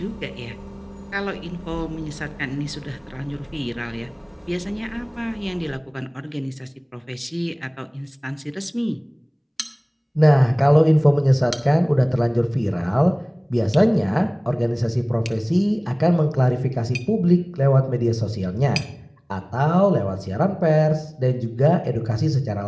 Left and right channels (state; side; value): identical; both; correlation 1.00